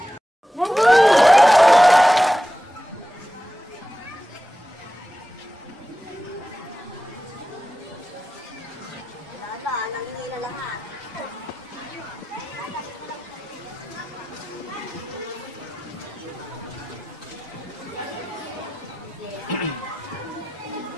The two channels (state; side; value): normal; both; correlation 0.94